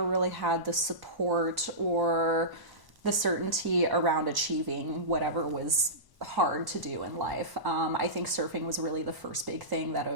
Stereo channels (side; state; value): left; late; 1.0 ms